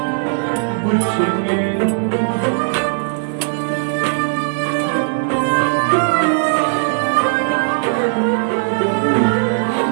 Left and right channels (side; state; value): left; silent; digital silence